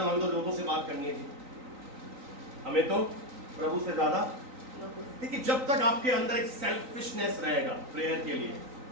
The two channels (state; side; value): late; left; 3.9 ms